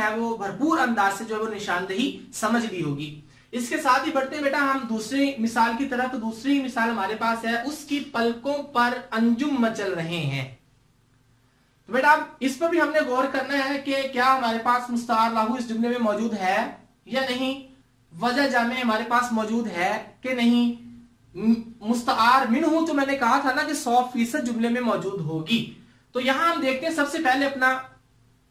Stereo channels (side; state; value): both; identical; correlation 1.00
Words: वो भरपूर अंदाज से जो है वो निशानदेही समझ ली होगी। इसके साथ ही बढ़ते बेटा हम दूसरी मिसाल की तरफ। तो दूसरी मिसाल हमारे पास है, उसकी पलकों पर अंजुम मचल रहे हैं। तो बेटा इस पर भी हमने गौर करना है कि क्या हमारे पास मुस्तआर लाहू इस जुमले में मौजूद है या नहीं, वजह जामे हमारे पास मौजूद है कि नहीं। मुस्तआर मिन्हु तो मैंने कहा था ना कि 100% जुमले में मौजूद होगी। तो यहां हम देखते हैं सबसे पहले अपना